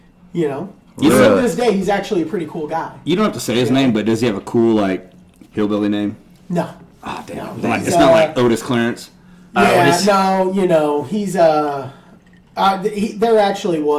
You Still know- to this day, he's actually a pretty cool guy. You don't have to say his name, but does he have a cool, like, hillbilly name? No. Ah, damn. No, Like, he's, it's not like Otis Clarence. Yeah, no, he's there actually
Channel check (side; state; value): both; identical; correlation 1.00